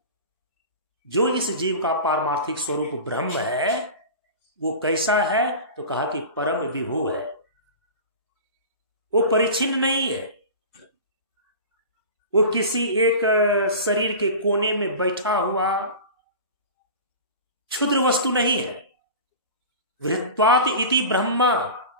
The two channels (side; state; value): both; inverted; correlation -0.34